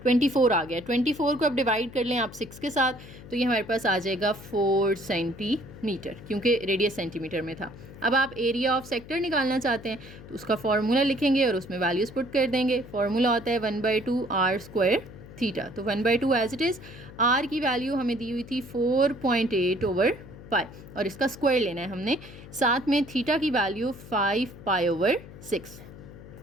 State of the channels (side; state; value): left; noise; hum, 17 dB below the sound